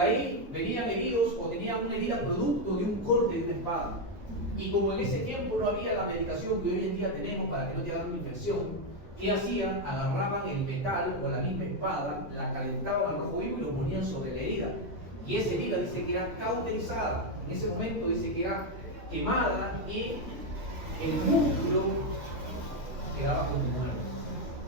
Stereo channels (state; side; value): normal; both; correlation 0.05